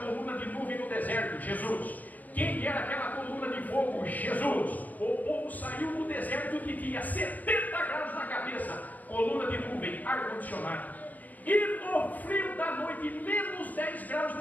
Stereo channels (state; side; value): late; right; 0.081 ms